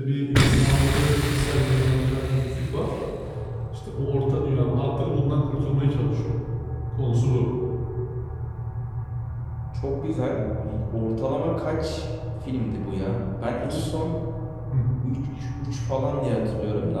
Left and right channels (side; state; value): both; identical; correlation 1.00